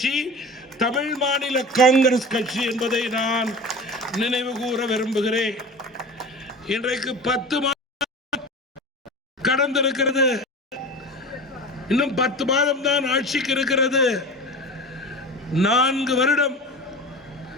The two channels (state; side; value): normal; both; correlation 0.34